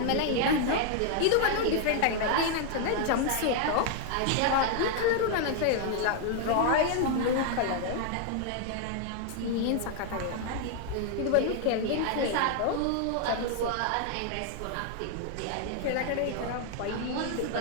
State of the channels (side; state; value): both; different; correlation 0.00